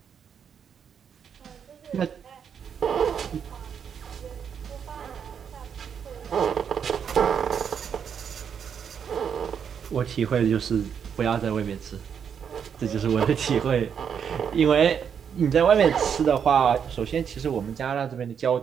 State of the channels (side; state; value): left; quieter; 7.5 dB